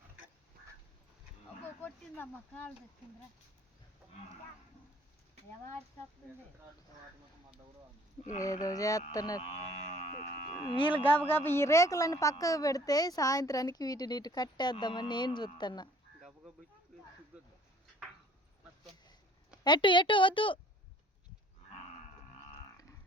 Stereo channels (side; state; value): both; normal; correlation 0.55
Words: ఏదో చేస్తున్నారు వీళ్ళు. గబగబ ఈ రేకులన్నీ పక్కకు పెడితే సాయంత్రానికి వీటిని ఇటు కట్టేద్దామని నేను చూస్తున్నా. ఎటు వద్దు